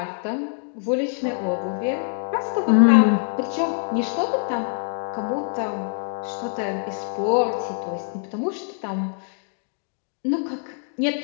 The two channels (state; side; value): silent; right; 58 dB below the other